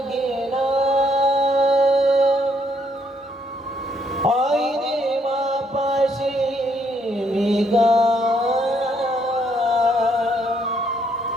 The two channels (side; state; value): both; normal; correlation 0.71